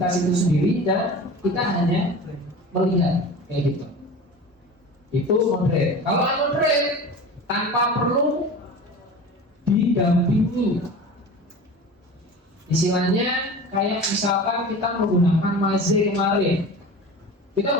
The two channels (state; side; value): normal; both; correlation 0.35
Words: itu sendiri dan kita hanya melihat, kayak gitu. Itu moderate. Kalau unmoderate tanpa perlu didampingi. Istilahnya kayak misalkan kita menggunakan Maze kemarin, kita